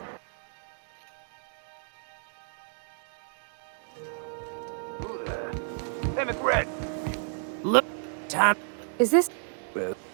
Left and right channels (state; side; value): silent; left; digital silence